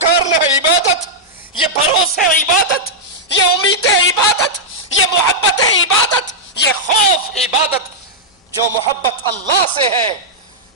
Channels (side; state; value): both; normal; correlation -0.07